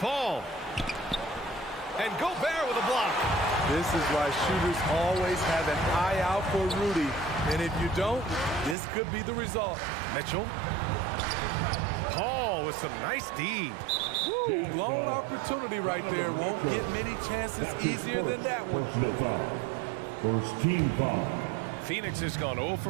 And Gobert with a block. This is why shooters always have an eye out for Rudy. And if you don't, this could be the result. Mitchell. Paul with some nice D. Woo, blown opportunity right there. Won't get many chances easier than that one. Personal foul. First team foul. Phoenix has gone 0 for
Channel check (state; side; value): drops out; left; at 8.8 s